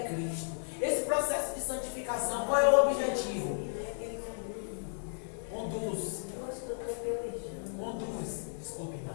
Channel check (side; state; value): right; silent; digital silence